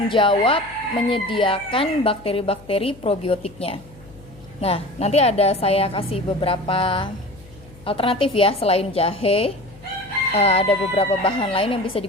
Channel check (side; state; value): left; noise; hum, 23 dB below the sound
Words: jawab menyediakan bakteri-bakteri probiotiknya. Nah, nanti saya kasih beberapa alternatif ya, selain jahe, ada beberapa bahan lain yang bisa